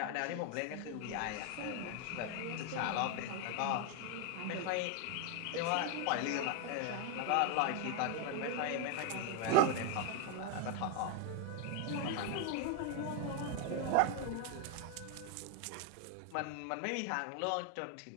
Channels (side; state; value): both; different; correlation 0.01